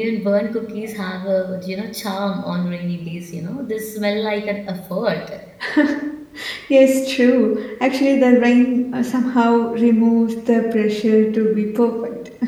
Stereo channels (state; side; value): identical; both; correlation 1.00